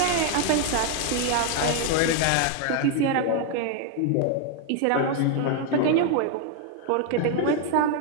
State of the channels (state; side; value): different; both; correlation 0.00